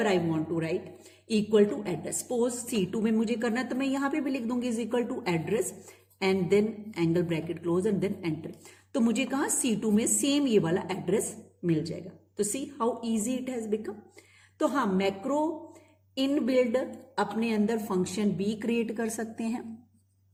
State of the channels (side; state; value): both; identical; correlation 1.00